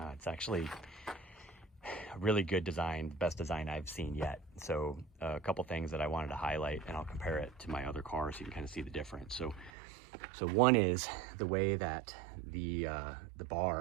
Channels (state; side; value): drops out; left; at 9.7 s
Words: It's actually a really good design, best design I've seen yet. So a couple things that I wanted to highlight, and I'll compare it to my other car so you can kind of see the difference. So one is the way that the